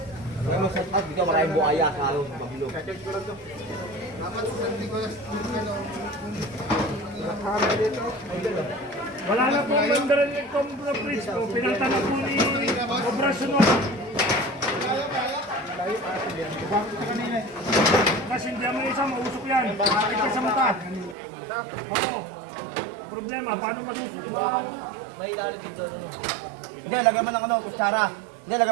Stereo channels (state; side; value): drops out; left; at 21.2 s